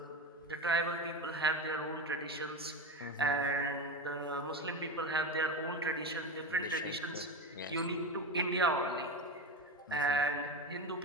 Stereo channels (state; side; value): normal; both; correlation 0.20